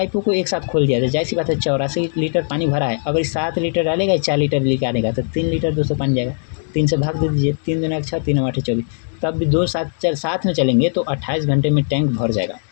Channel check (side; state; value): right; silent; digital silence